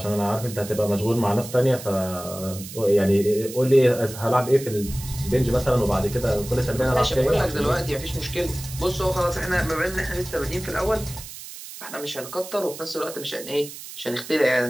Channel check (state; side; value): noise; right; hiss, 13 dB below the sound